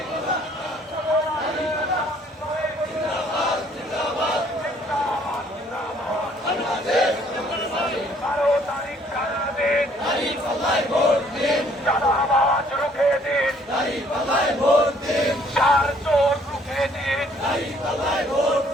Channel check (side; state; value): both; normal; correlation 0.62